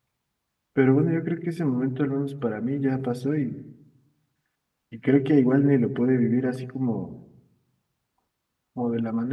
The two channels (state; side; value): identical; both; correlation 1.00